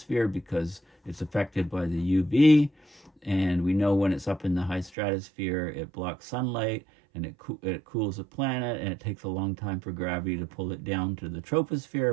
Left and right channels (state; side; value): drops out; left; at 4.9 s